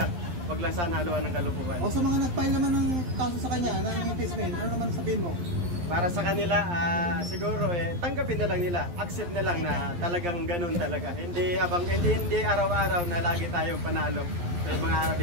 Huwag lang sana haluan ng kalukuhan. O sa mga nag-file naman ng kaso sa kanya, ng impeachment, ano naman sabihin mo? Para sa kanila, siguro tanggapin na lang nila, accept na lang na talagang ganun talaga. Hindi araw-araw na lagi tayong panalo. May mga araw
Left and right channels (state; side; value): late; left; 11 ms